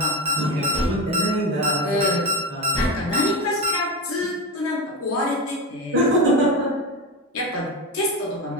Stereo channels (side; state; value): both; normal; correlation 0.20